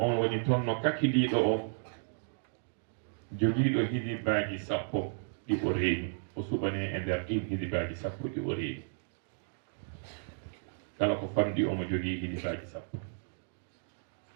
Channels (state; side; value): silent; left; digital silence